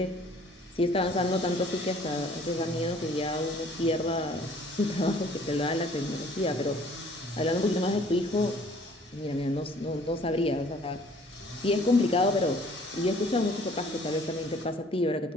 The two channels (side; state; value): both; normal; correlation 0.55